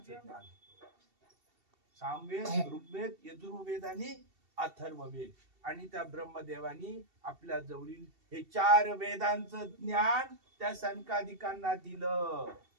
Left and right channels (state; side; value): late; left; 2.7 ms